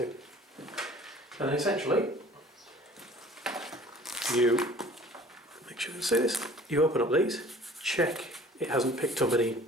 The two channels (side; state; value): both; normal; correlation 0.49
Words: And then essentially, you make sure you can see this. You open up these, check it hasn't picked up any